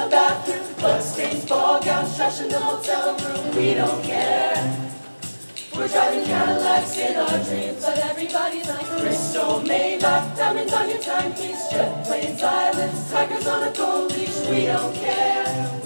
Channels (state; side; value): inverted; both; correlation -1.00